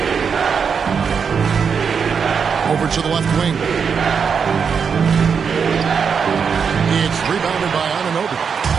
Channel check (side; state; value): left; quieter; 6.4 dB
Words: Over to the left wing. It's rebounded by Anunoby.